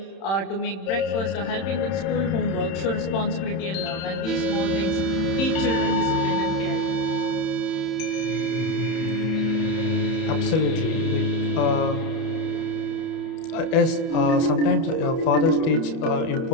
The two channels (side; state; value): right; late; 31 ms